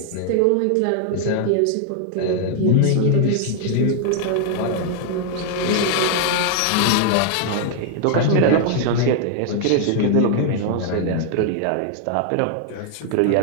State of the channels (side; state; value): both; different; correlation 0.00